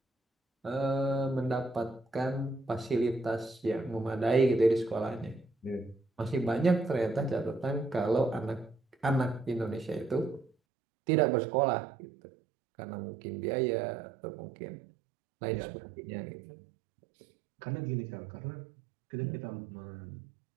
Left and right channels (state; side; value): drops out; left; at 10.5 s